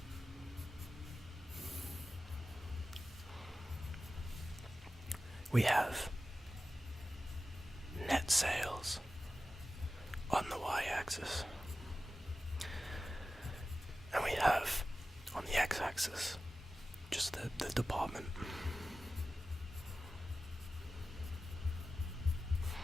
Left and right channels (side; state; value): both; normal; correlation 0.94